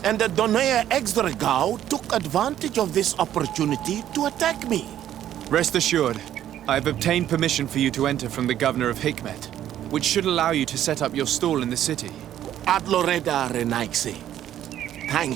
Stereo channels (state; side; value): quieter; left; 11.5 dB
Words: and the Donea Exdragao took advantage of this opportunity to attack me. Rest assured, I have obtained permission for you to enter from the governor of Hikmet, which should allow you to set up your stall in the city. Adloreda Renaigse.